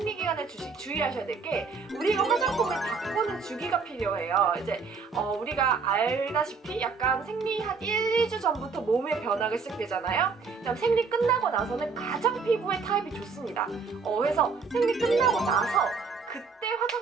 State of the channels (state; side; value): quieter; left; 4.9 dB